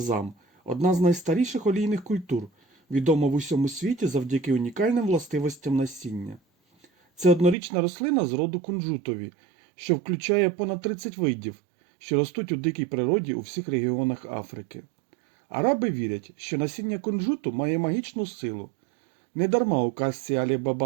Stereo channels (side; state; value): left; drops out; at 7.6 s